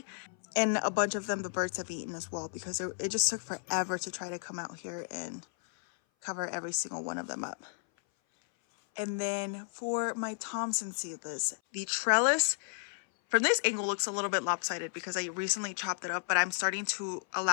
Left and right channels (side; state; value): right; silent; 56 dB below the other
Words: And a bunch of them the birds have eaten as well, because it just took forever to try to come out here and cover every single one of them up. And then for my Thompson seedless, the trellis from this angle looks a little bit lopsided because I recently chopped it up, but I'm starting to